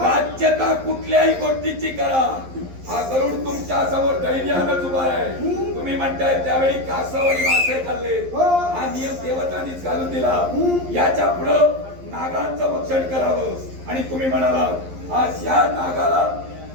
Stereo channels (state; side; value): late; left; 11 ms